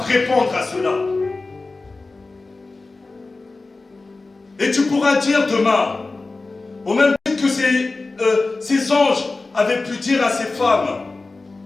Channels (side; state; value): right; quieter; 3.5 dB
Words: répondre à cela. Et tu pourras dire demain, au même titre que ces anges avaient pu dire à ces femmes,